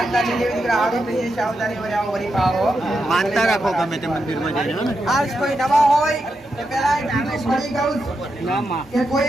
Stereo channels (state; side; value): normal; both; correlation 0.86